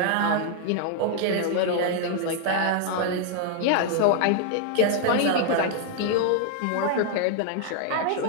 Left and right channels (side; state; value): both; different; correlation 0.00